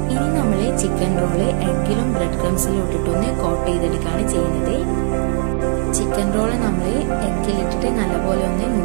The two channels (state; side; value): silent; left; digital silence